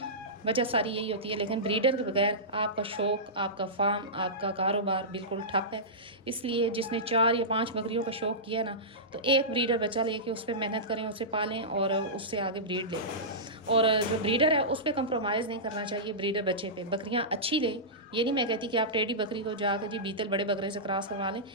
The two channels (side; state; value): both; normal; correlation -0.17